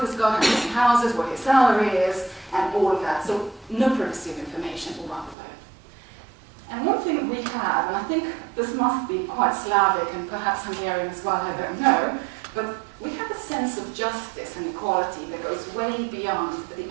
has got, how many houses, what his salary is, and all of that. So no privacy of information all around the world. And one thing we have, and I think this must be quite Slavic and perhaps Hungarian as well, I don't know, but we have a sense of justice and equality that goes way beyond the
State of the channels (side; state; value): left; drops out; at 5.4 s